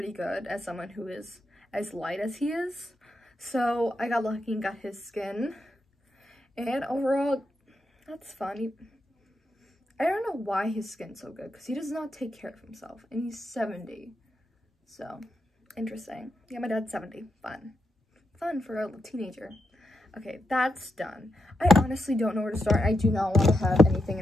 good as someone who is as light as he is. So I got lucky and got his skin, and overall, that's fun. I don't know why his skin's so good, because he does not take care of himself, and he's 70, so interesting. Yeah, my dad's 70, fun for a teenager. Okay, that's done. I honestly don't know where to start. I do not want to have anything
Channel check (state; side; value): normal; both; correlation 0.84